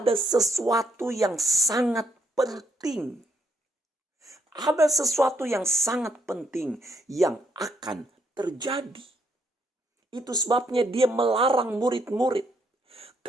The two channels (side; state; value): both; normal; correlation 0.73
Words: sesuatu yang sangat penting. Ada sesuatu yang sangat penting yang akan terjadi. Itu sebabnya dia melarang murid-murid.